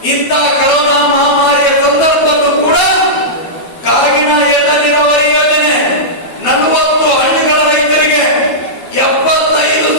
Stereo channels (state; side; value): late; right; 12 ms